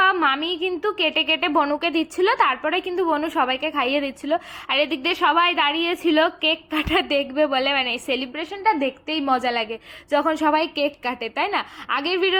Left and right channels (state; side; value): identical; both; correlation 1.00